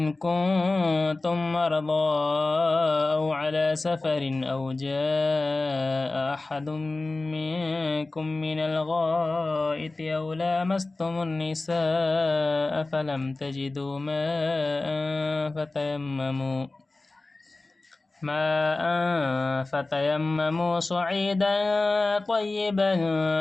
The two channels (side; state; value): right; quieter; 3.2 dB